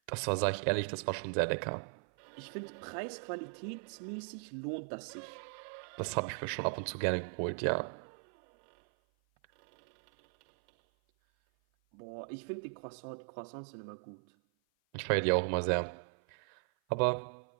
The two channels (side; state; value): left; silent; 53 dB below the other